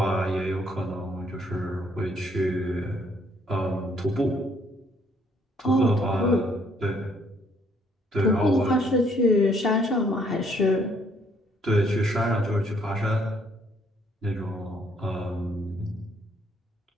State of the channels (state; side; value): normal; both; correlation 0.66